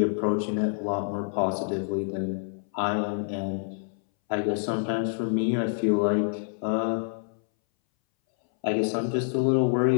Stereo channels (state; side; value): silent; right; 60 dB below the other